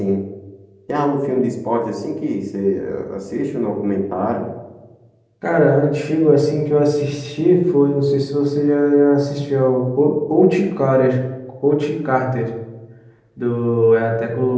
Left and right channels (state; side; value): identical; both; correlation 1.00